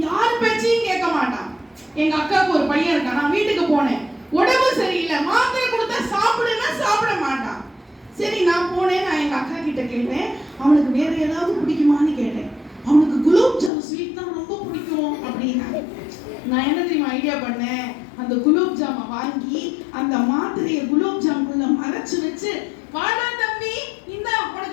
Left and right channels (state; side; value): drops out; right; at 13.7 s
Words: யார் பேச்சையும் கேட்க மாட்டான். எங்க அக்காவுக்கு ஒரு பையன் இருக்கான். நான் வீட்டுக்கு போனேன், உடம்பு சரியில்லை, மாத்திரை கொடுத்தா சாப்பிடுன்னா சாப்பிட மாட்டான். சரி நான் போனேன், நான் எங்க அக்கா கிட்ட கேட்டேன், அவனுக்கு வேற ஏதாவது பிடிக்குமான்னு கேட்டேன். அவனுக்கு குலோப் ஜாம் ஸ்வீட் தான் ரொம்ப பிடிக்கும் அப்படின்னா. நான் என்ன தெரியுமா ஐடியா பண்ணேன்? அந்த குலோப் ஜாமை வாங்கி அந்த மாத்திரையை குலோப் ஜாமுக்குள்ள மறைச்சு வச்சு, வாடா தம்பி இந்த